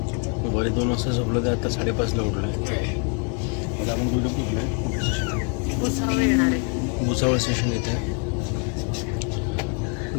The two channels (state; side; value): quieter; right; 36.8 dB